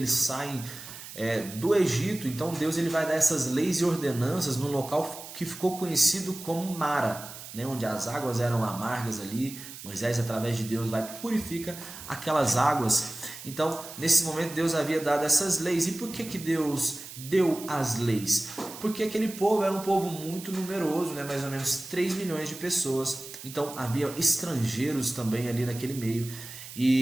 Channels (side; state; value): right; noise; hiss, 13 dB below the sound